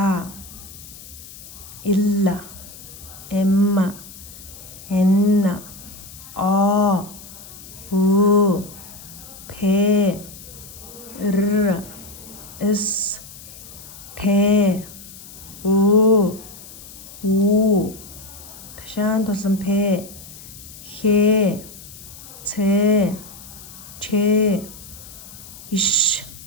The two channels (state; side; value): noise; left; hiss, 17 dB below the sound